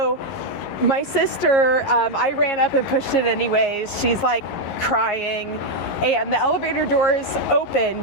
my sister, I ran up and pushed it anyways. She's like crying, and the elevator doors open.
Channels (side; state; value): right; late; 11 ms